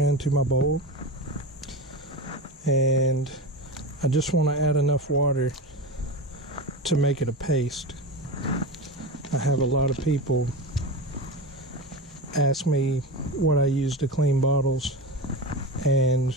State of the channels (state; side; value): normal; both; correlation 0.23